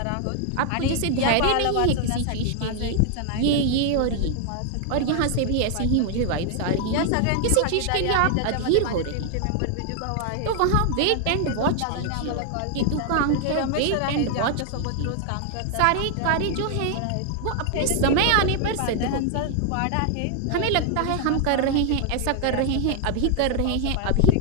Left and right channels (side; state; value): both; different; correlation 0.00